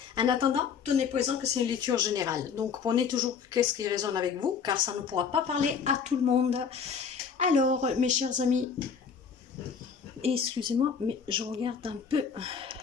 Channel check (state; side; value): quieter; right; 6.5 dB